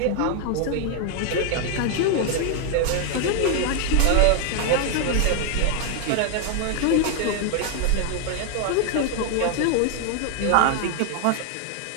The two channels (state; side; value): different; both; correlation 0.00